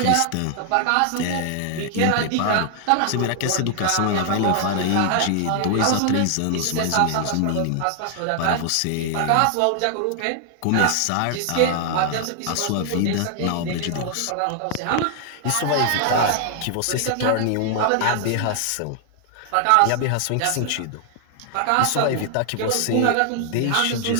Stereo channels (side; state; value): both; different; correlation 0.00